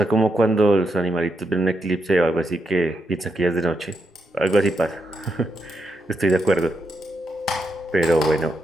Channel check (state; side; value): normal; both; correlation 0.82